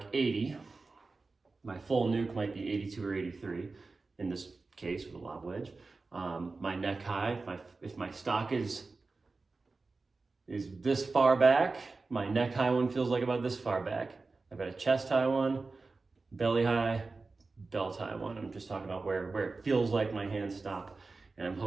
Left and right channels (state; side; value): quieter; left; 3.8 dB